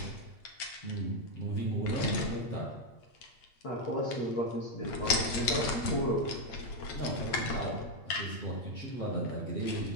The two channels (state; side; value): late; right; 8.9 ms